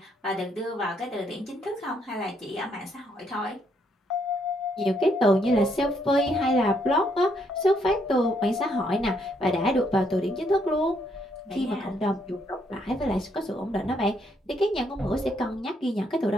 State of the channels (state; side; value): normal; both; correlation 0.73